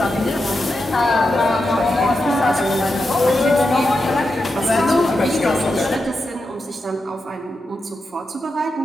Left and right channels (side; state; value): both; normal; correlation 0.88